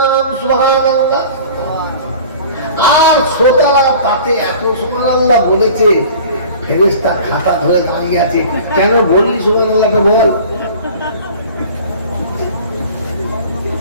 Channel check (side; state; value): both; inverted; correlation -0.43